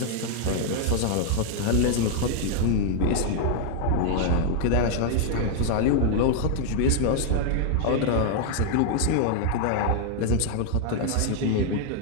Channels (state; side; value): different; both; correlation 0.00